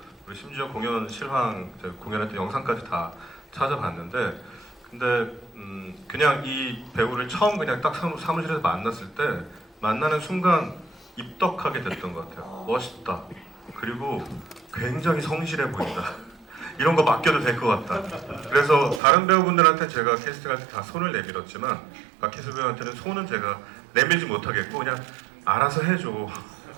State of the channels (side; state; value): left; drops out; at 19.0 s